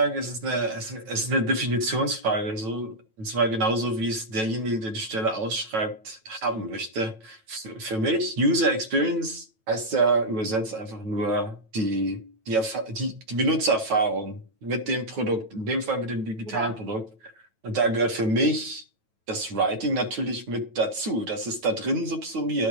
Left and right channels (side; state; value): left; late; 9.1 ms